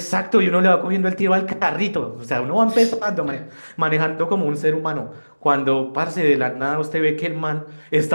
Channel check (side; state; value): both; inverted; correlation -1.00